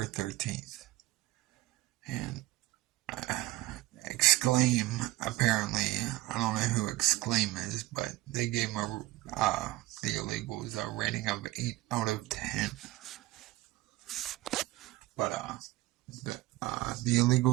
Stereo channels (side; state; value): left; quieter; 18.0 dB